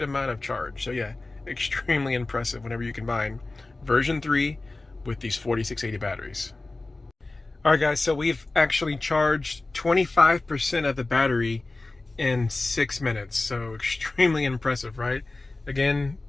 amount of charge. So yeah, extremely impressive whenever you combine version 3 with these 4680 batteries. All right, guys, so we've actually charged 25% of the battery in 6 minutes. So extremely impressive, right? Again,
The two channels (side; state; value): right; quieter; 3.2 dB